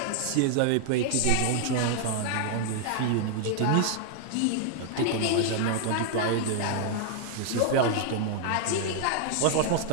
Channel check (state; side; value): different; both; correlation 0.00